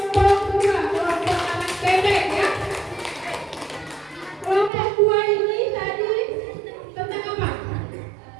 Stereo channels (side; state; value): left; drops out; at 4.7 s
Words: 2, kelompok anak bebek ya. Kelompok 2 ini tadi tentang apa?